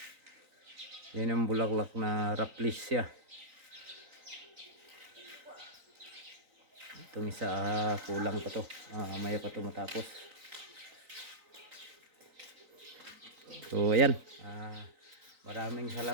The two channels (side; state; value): left; late; 3.9 ms